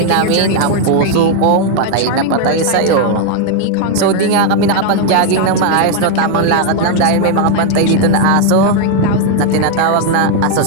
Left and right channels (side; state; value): both; different; correlation 0.00